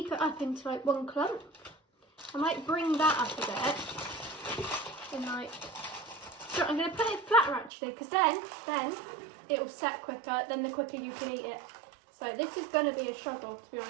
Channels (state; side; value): drops out; left; at 7.7 s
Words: it up into like one clump. I might bring that up a bit and like So I'm going to put it flatter actually, because then it will set quicker, then the quicker you can eat it. So this is going to be a struggle, to be